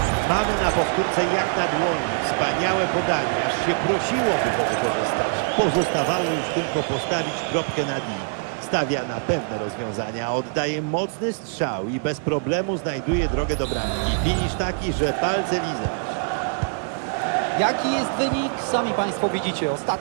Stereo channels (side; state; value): left; silent; 61 dB below the other